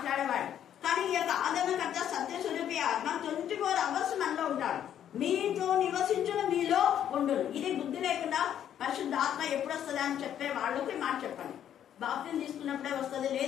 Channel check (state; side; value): quieter; right; 10.1 dB